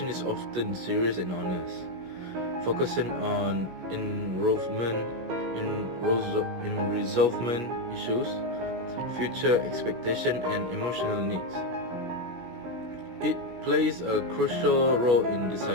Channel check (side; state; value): left; late; 17 ms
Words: is often serious and honest, focusing on resolvement issues, future expectation, and emotional needs. It plays a crucial role in